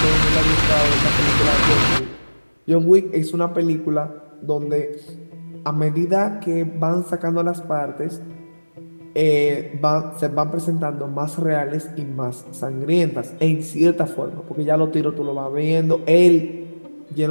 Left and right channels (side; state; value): both; inverted; correlation -1.00